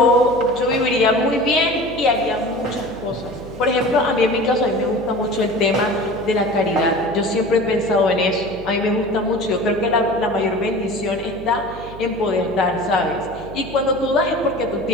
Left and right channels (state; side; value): noise; right; hum, 15 dB below the sound